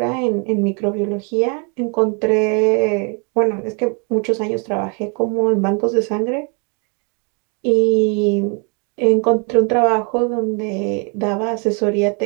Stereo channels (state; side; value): quieter; left; 35.6 dB